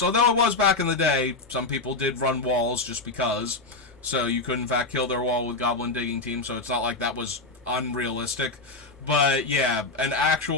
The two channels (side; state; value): right; quieter; 3.3 dB